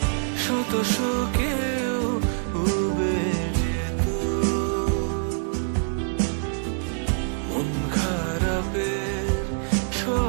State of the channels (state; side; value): silent; left; 58 dB below the other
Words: শত শোকেও উবে যেত মন খারাপের